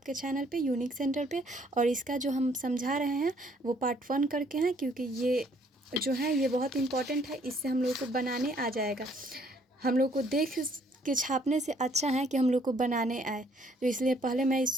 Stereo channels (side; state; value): both; normal; correlation 0.64